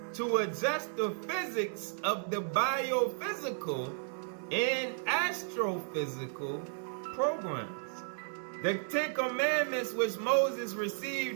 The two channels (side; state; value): left; silent; digital silence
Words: to adjust the physics of the biophysical and astrophysical programs. The 10 commandments which Moses